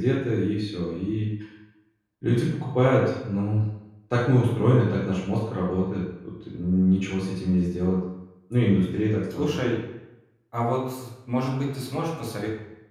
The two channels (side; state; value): both; identical; correlation 1.00